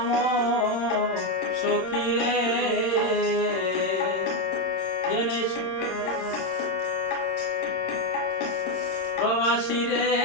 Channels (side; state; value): right; late; 26 ms